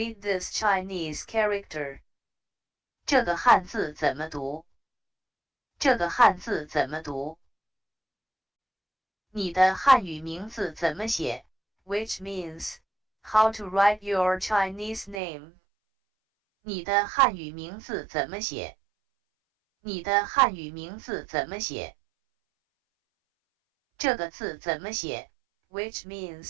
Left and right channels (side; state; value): left; drops out; at 15.2 s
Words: this Chinese character. 这个汉字怎么读这个汉字怎么读你的汉语名字怎么写 which means, how to write your Chinese name. 你的汉语名字怎么写你的汉语名字怎么写这个字怎么写 which